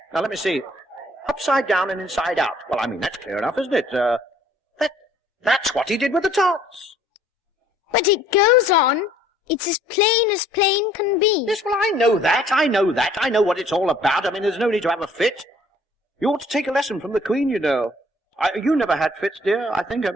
Now, let me see. Upside down and inside out. Well, I mean, that's clear enough, isn't it? That's what he did with the tarts. But it goes on. It's as plain can be. Yes, well, I know that. I know what it's all about. I mean, there's no need to have a fit. You ought to take a lesson from the Queen, you know. You never had fits, dear, I think, have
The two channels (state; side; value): normal; both; correlation 0.59